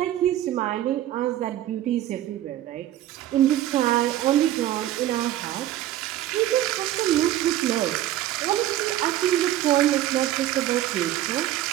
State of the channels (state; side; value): quieter; left; 13.3 dB